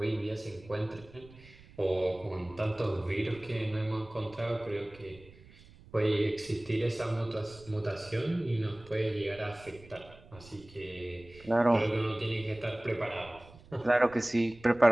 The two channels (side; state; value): right; noise; rumble, 22 dB below the sound